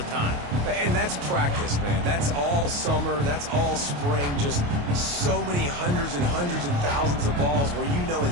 time. And that's practice, man. That's all summer. That's all spring. Just so many hundreds and hundreds and thousands of balls where you know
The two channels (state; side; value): late; left; 28 ms